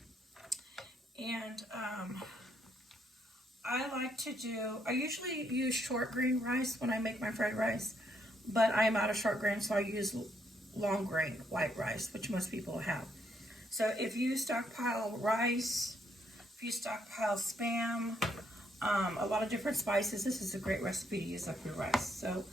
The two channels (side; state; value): both; normal; correlation 0.74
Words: And I usually use short grain rice when I make my fried rice, but I am out of short grain, so I use long grain white rice, which most people have. So if you stockpile rice, if you stockpile Spam, a lot of different spices, this is a great recipe to use up your rice. So